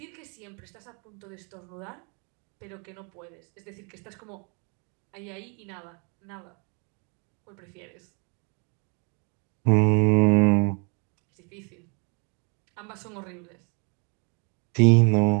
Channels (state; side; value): quieter; left; 35.7 dB